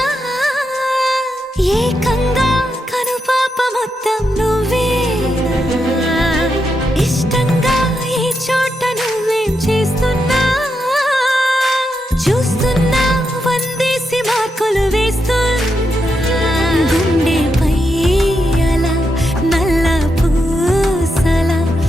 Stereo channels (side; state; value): both; normal; correlation 0.84